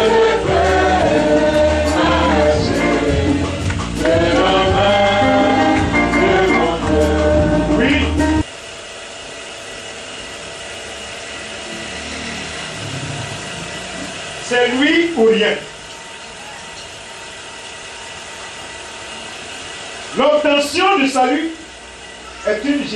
C'est lui ou rien. L'obtention du salut est une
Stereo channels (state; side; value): identical; both; correlation 1.00